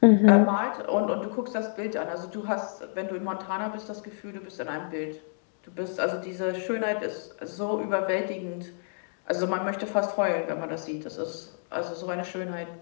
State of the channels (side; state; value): right; silent; digital silence